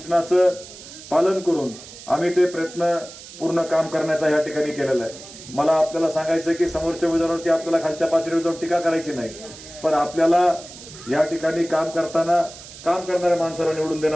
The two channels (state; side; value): noise; right; hiss, 16 dB below the sound